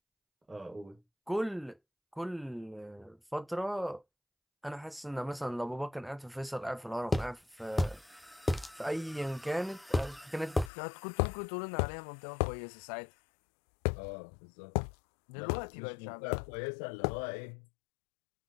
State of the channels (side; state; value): right; drops out; at 10.7 s